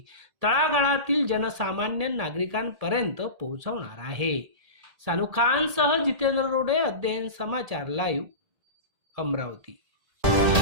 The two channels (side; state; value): left; late; 1.8 ms